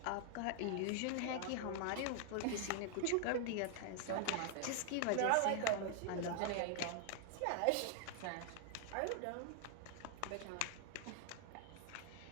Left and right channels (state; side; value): different; both; correlation 0.00